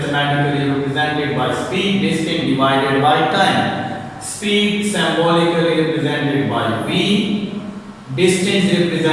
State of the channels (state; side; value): identical; both; correlation 1.00